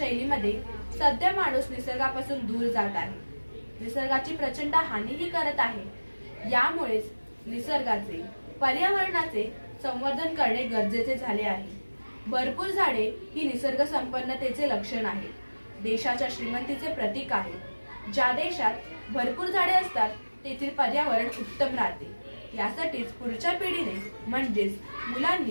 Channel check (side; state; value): both; inverted; correlation -1.00